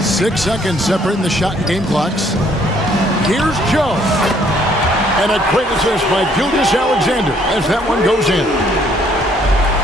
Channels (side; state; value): both; normal; correlation 0.64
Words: 6 seconds separating the shot and game clocks. Here's Joe. And a great assist by Gilgeous-Alexander as that one goes in.